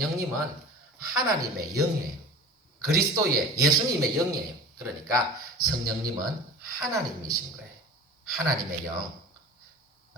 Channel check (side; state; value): both; normal; correlation 0.38